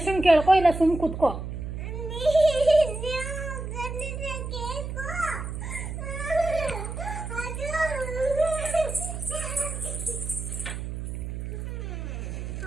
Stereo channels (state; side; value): noise; right; hum, 6 dB below the sound